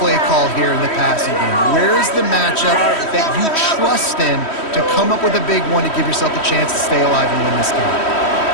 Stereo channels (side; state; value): right; late; 3.1 ms